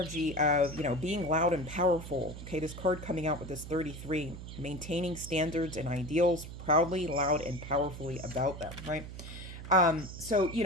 of, being loud and powerful. Okay, this card coming out with this 33, maintaining standards and ideals, proudly, loud, and powerfully about them, right? So,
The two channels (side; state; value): right; noise; hum, 11 dB below the sound